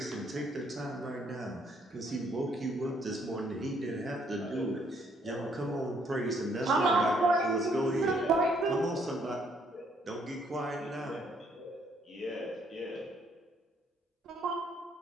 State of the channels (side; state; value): both; normal; correlation 0.68